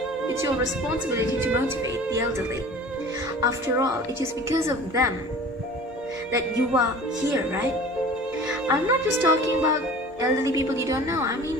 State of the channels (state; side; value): normal; both; correlation 0.43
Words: it's your responsibility to motivate the elderly. After all, it is because of them that you are here, right? I'm not just talking about elderly people you don't know. I